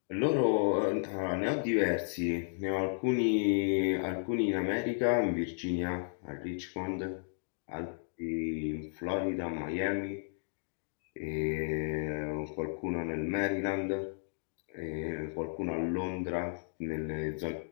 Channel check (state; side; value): silent; right; digital silence